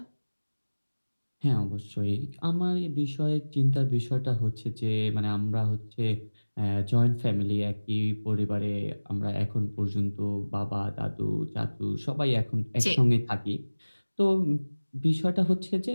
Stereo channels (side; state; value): both; inverted; correlation -1.00